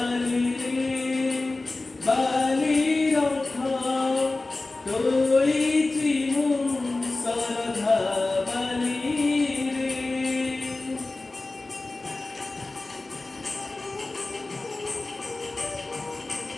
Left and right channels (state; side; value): quieter; right; 3.2 dB